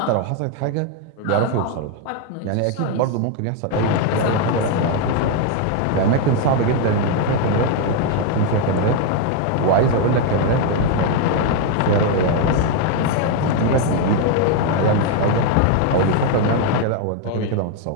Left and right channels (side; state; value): both; different; correlation 0.01